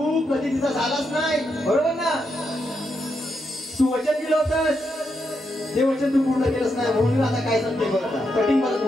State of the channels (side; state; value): both; normal; correlation 0.82